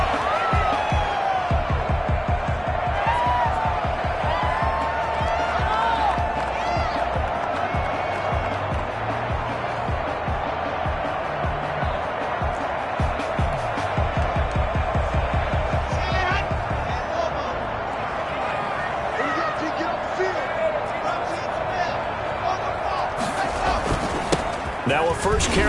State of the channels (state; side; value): identical; both; correlation 1.00